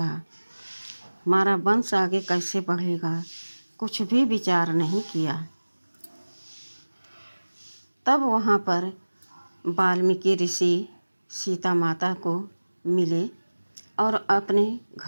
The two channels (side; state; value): both; inverted; correlation -1.00